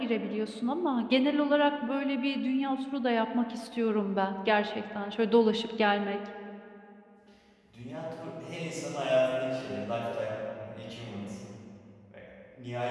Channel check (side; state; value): both; identical; correlation 1.00